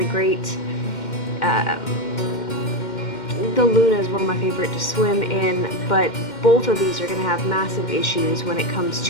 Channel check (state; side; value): late; right; 2.1 ms